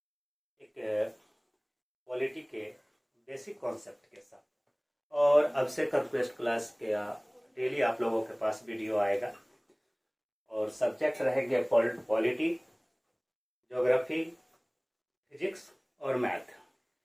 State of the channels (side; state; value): both; identical; correlation 1.00